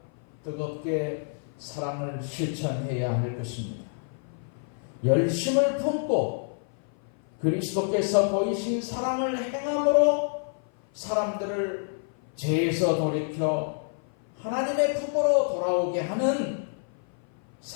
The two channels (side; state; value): right; silent; 55 dB below the other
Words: 뜨겁게 사랑을 실천해야 할 것입니다. 열심을 품고 그리스도께서 보이신 사랑을 행함으로 사람들을 죄에서 돌이켜 하나님의 품으로 돌아오게 하는